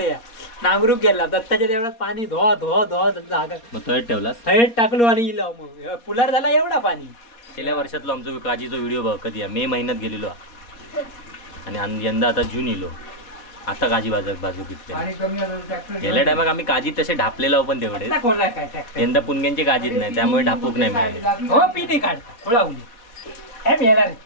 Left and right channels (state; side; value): late; right; 4.2 ms